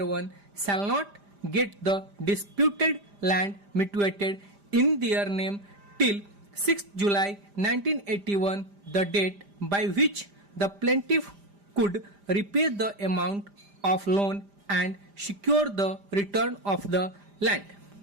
1 shall not get the disputed land mitigated in their name till 6th July 1981, the date by which the plaintiff could repay the amount of loan and secure the return of the land.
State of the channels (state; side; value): late; left; 5.0 ms